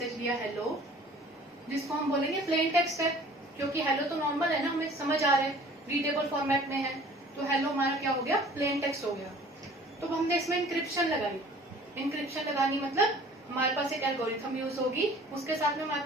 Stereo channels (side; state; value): both; normal; correlation 0.49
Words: लिया hello, जिसको हम बोलेंगे प्लेन टेक्स्ट है, क्योंकि हेलो तो नॉर्मल है ना, हमें समझ आ रहा है, रीडेबल फॉर्मेट में है, तो हेलो हमारा क्या हो गया, प्लेन टेक्स्ट हो गया. तो हमने इसमें इंक्रिप्शन लगाई. इंक्रिप्शन लगानी मतलब हमारे पास एक एल्गोरिथम यूज होगी, उसके साथ में हमारे